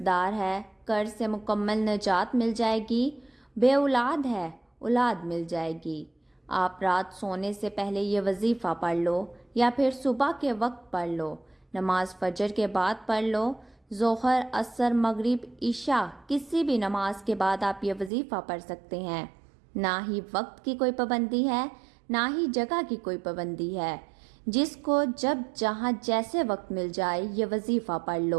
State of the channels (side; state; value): left; drops out; at 18.1 s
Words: دار ہے قرض سے مکمل نجات مل جائے گی، بے اولاد ہے اولاد مل جائے گی۔ آپ رات سونے سے پہلے یہ وظیفہ پڑھ لو، یا پھر صبح کے وقت پڑھ لو، نماز فجر کے بعد پڑھ لو، ظہر، عصر، مغرب، عشاء کسی بھی نماز کے بعد آپ یہ وظیفہ پڑھ سکتے ہیں۔ نہ ہی وقت کی کوئی پابندی ہے، نہ ہی جگہ کی کوئی پابندی ہے، جس کو جب جہاں جیسے وقت مل جائے یہ وظیفہ پڑھ